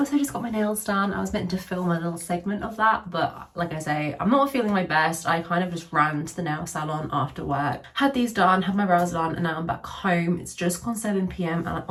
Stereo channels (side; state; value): both; identical; correlation 1.00